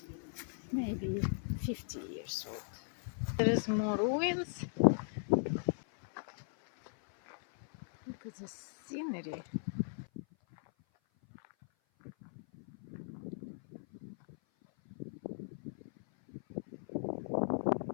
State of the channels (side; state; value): right; silent; 52 dB below the other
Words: Maybe 50 years old. There is more ruins. Look at the scenery.